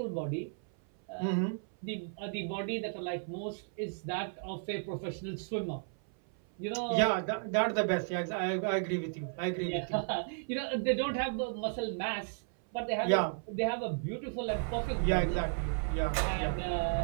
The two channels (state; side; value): silent; left; 55 dB below the other